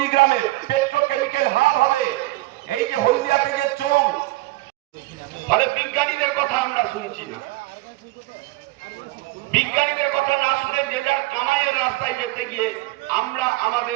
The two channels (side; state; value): left; quieter; 19.7 dB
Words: পেট্রোকেমিক্যাল হাব হবে। এই যে হলদিয়াতে যে চোং, ফলে বিজ্ঞানীদের কথা আমরা শুনছি না। বিজ্ঞানীদের কথা না শুনে যে যার কামাইয়ের রাস্তায় যেতে গিয়ে আমরা